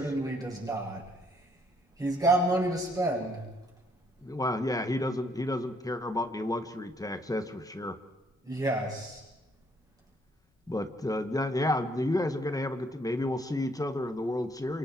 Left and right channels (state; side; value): normal; both; correlation 0.67